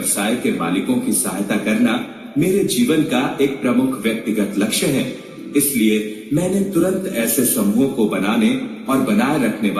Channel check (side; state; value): both; identical; correlation 1.00